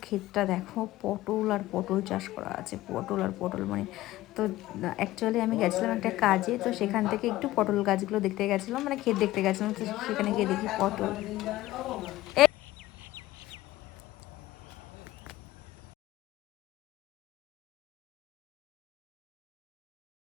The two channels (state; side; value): quieter; right; 16.6 dB